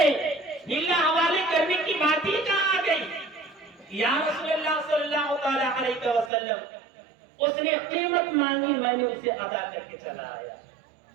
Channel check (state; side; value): drops out; left; at 6.3 s